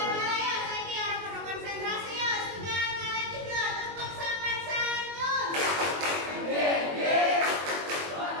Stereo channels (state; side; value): late; left; 21 ms